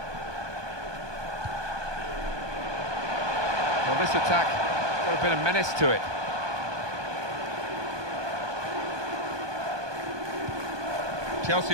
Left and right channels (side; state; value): left; late; 1.2 ms